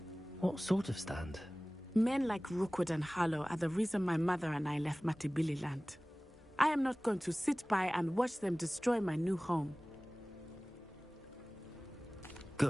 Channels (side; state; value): both; normal; correlation 0.98